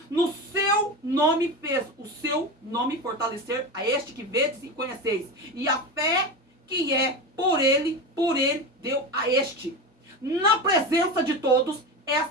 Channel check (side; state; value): both; normal; correlation 0.23